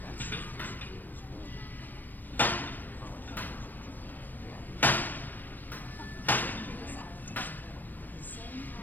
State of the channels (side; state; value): right; late; 0.086 ms